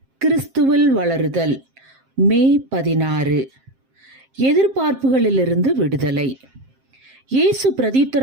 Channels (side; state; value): left; late; 7.6 ms